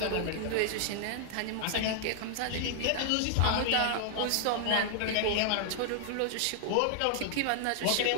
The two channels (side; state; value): both; different; correlation -0.01